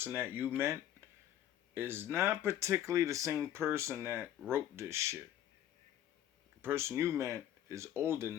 that you meant is not particularly the same person that wrote this shit. The person you meant is older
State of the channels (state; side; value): quieter; right; 11.5 dB